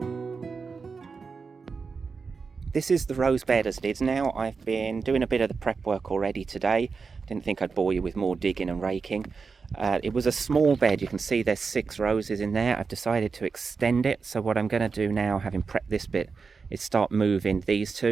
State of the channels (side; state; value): left; quieter; 5.0 dB